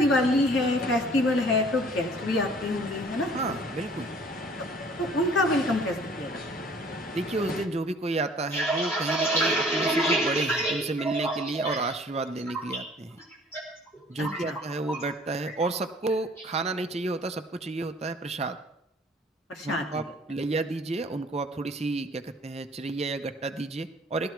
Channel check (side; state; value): both; normal; correlation 0.53